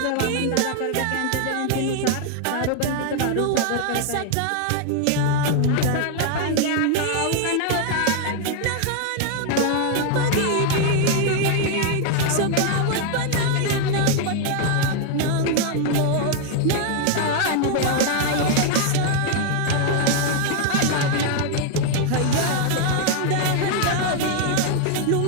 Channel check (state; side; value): different; both; correlation 0.00